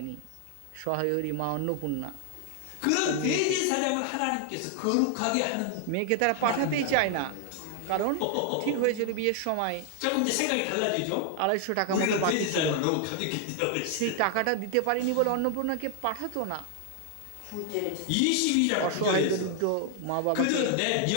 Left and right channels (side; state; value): both; different; correlation 0.00